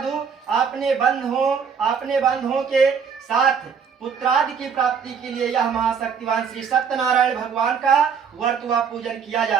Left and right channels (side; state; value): left; quieter; 6.5 dB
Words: आपने बंधुओं के साथ पुत्रादि की प्राप्ति के लिए यह महाशक्तिवान श्री सत्यनारायण भगवान का व्रत व पूजन किया जा